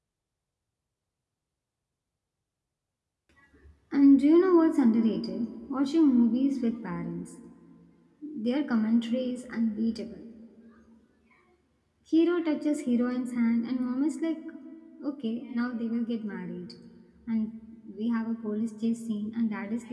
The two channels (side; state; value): both; identical; correlation 1.00